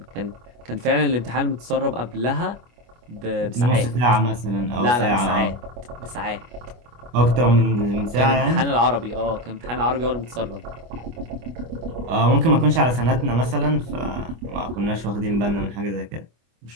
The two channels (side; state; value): left; late; 25 ms